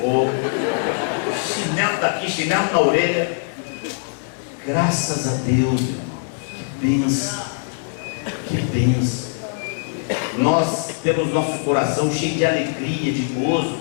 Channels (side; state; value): right; silent; 58 dB below the other